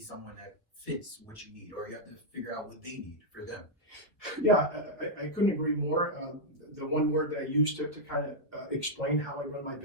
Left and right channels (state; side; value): normal; both; correlation -0.04